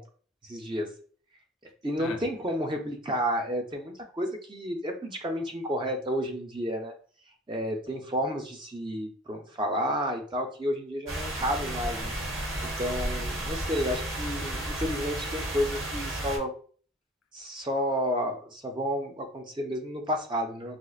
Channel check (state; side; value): normal; both; correlation 0.44